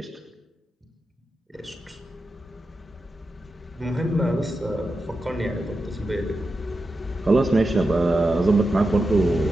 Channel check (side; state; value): both; normal; correlation 0.90